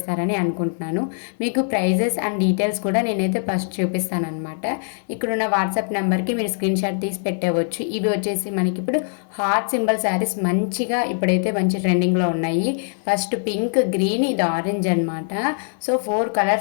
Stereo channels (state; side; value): silent; right; 57 dB below the other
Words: అనుకుంటున్నాను. మీకు ప్రైజెస్ అండ్ డీటెయిల్స్ కూడా నేనైతే ఫస్ట్ చూపిస్తానమాట. ఇక్కడున్న వాట్సాప్ నెంబర్కి మీరు స్క్రీన్ షాట్ తీసి పెట్టవచ్చు. ఇవి వచ్చేసి మనకి ఇప్పుడు హార్ట్ సింబల్ శారీస్ మంచిగా ఇప్పుడైతే మంచి ట్రెండింగ్లో ఉన్నాయి. ఫస్ట్ పింక్, గ్రీన్, ఇది ఆరెంజ్ అనమాట. సో 4